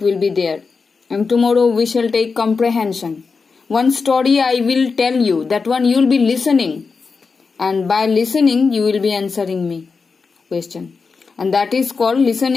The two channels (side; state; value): right; quieter; 4.8 dB